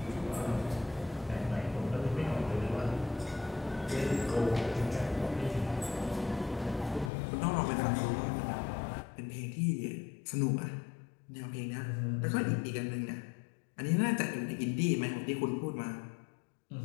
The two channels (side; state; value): right; drops out; at 7.1 s